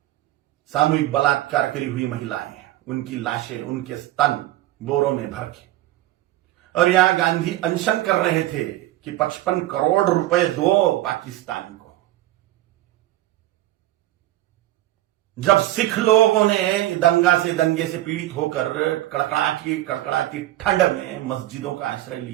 सामूहिक बलात्कार करी हुई महिलाएं, उनकी लाशें, उनके स्तन बोरों में भर के। और यहां गांधी अनशन कर रहे थे कि 55 करोड़ रुपए दो पाकिस्तान को। जब सिख लोगों ने दंगे से पीड़ित होकर कड़कड़ाती ठंड में मस्जिदों का आश्रय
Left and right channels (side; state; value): left; quieter; 15.4 dB